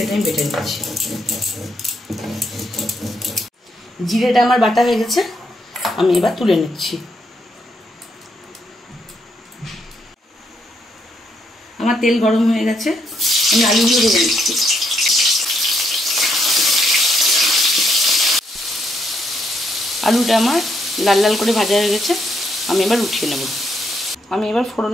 আমি বেটে নিচ্ছি। জিরেটা আমার বাটা হয়ে গেছে, আমি এবার তুলে নিচ্ছি। আমার তেল গরম হয়ে গেছে, আমি আলুগুলো ভেজে নিচ্ছি। আলুটা আমার লাল লাল করে ভাজা হয়ে গেছে, আমি এবার উঠিয়ে নেব। আমি এবার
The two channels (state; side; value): normal; both; correlation 0.75